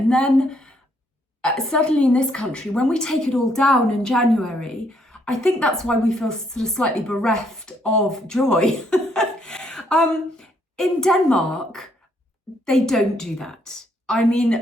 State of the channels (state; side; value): normal; both; correlation 0.70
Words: then certainly in this country, when we take it all down in January, I think that's why we feel sort of slightly bereft of joy. In Denmark, they don't do that. I